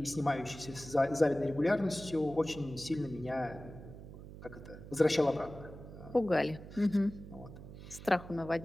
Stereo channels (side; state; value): right; noise; hum, 14 dB below the sound